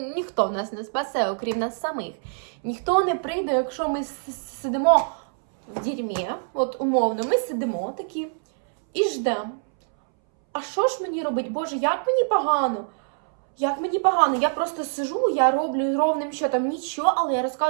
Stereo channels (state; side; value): silent; left; 62 dB below the other